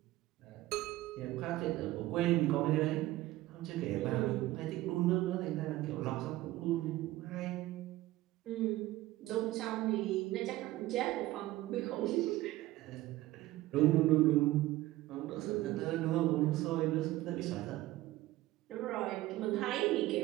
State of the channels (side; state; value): left; quieter; 16.8 dB